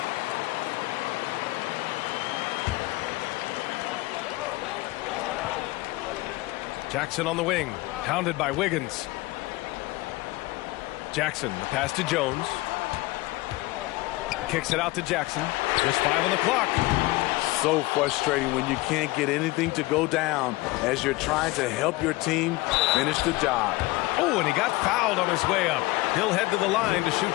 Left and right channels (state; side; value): quieter; right; 20.8 dB